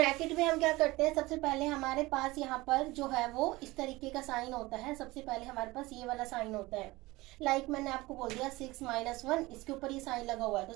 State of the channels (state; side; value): quieter; left; 20.6 dB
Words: में हम क्या करते हैं? सबसे पहले हमारे पास यहाँ पर जो है वो इस तरीके का साइन होता है। सबसे पहले हमारे पास ये वाला साइन होता है। मैंने आपको बोल दिया 6 - 1, इसके ऊपर ये साइन लगा हुआ है। तो